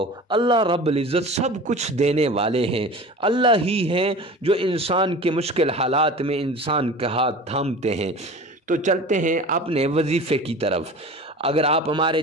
اللہ رب العزت سب کچھ دینے والے ہیں۔ اللہ ہی ہیں جو انسان کے مشکل حالات میں انسان کا ہاتھ تھامتے ہیں۔ تو چلتے ہیں اپنے وظیفے کی طرف۔ اگر آپ ہمارے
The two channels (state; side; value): normal; both; correlation 0.37